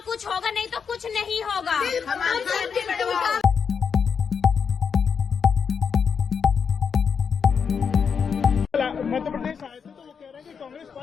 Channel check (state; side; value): quieter; right; 6.4 dB